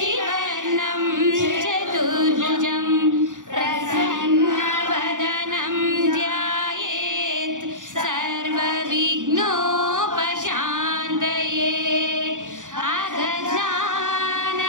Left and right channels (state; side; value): late; left; 0.87 ms